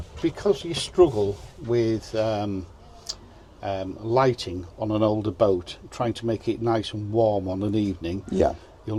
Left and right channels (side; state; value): both; identical; correlation 1.00